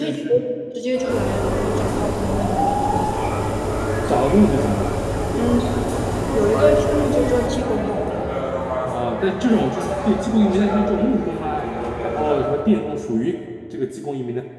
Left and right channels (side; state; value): both; identical; correlation 1.00